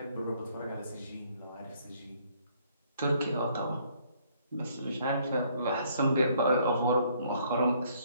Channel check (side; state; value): both; inverted; correlation -0.65